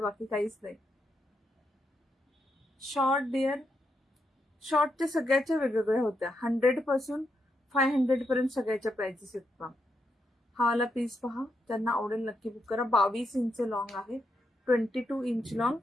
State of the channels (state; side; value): normal; both; correlation 0.82